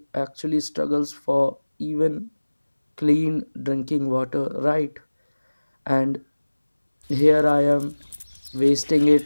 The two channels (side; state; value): both; inverted; correlation -1.00